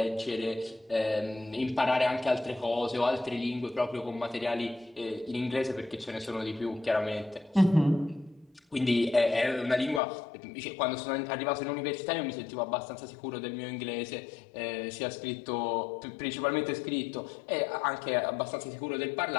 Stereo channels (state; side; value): drops out; right; at 10.0 s